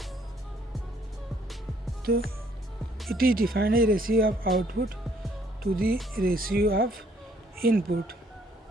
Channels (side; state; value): both; normal; correlation 0.65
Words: तो it is defined as ratio of output to the ratio of input.